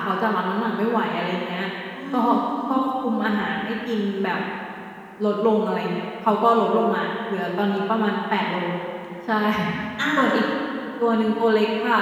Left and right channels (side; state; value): both; identical; correlation 1.00